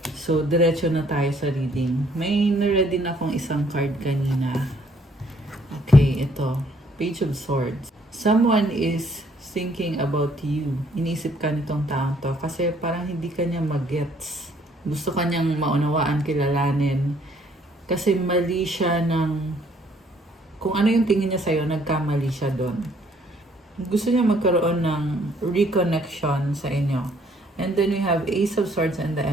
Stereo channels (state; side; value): normal; both; correlation 0.64